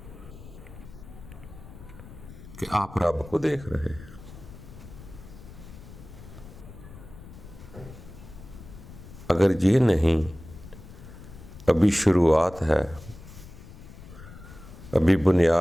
کہ آپ رب کو دیکھ رہے ہیں۔ اگر یہ نہیں، ابھی شروعات ہے، ابھی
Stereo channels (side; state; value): left; noise; rumble, 16 dB below the sound